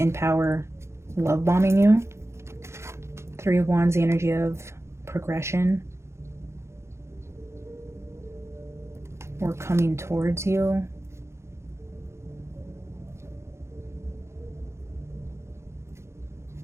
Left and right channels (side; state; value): left; late; 0.13 ms